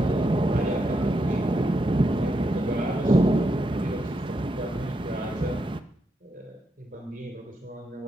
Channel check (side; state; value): both; normal; correlation 0.82